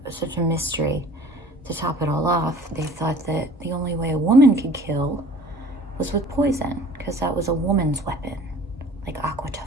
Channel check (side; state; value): both; normal; correlation 0.47